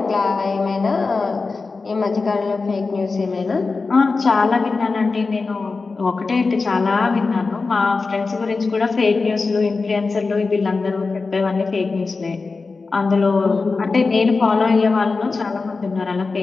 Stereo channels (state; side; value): quieter; right; 4.1 dB